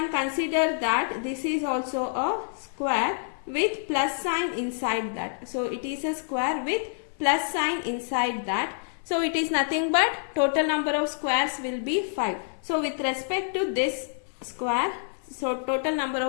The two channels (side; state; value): right; silent; 57 dB below the other